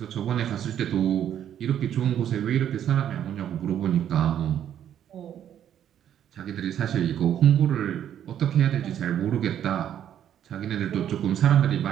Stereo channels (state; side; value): quieter; left; 10.1 dB